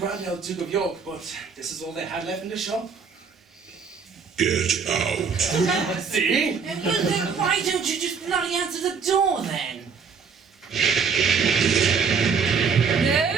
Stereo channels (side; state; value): left; quieter; 5.8 dB